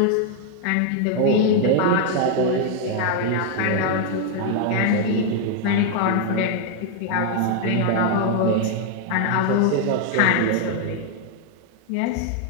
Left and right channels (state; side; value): different; both; correlation 0.00